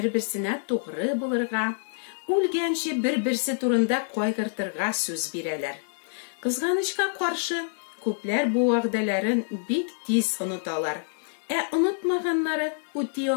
тугры булырга, үлгәнче бер-берсе турында кайгыртырга сүз бирәләр. Кызганычка каршы, күпләр бу вәгъдәләрен бик тиз оныталар. Онытмаганнары үти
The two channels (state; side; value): silent; right; digital silence